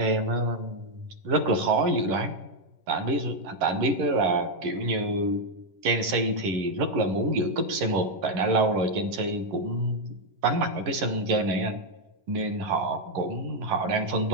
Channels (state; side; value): late; left; 11 ms